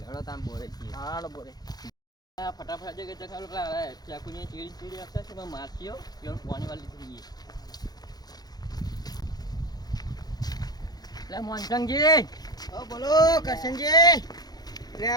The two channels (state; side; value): late; right; 0.19 ms